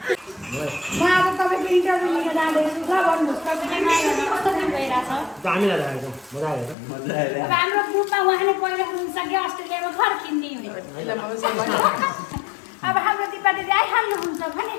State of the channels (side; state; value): right; drops out; at 6.8 s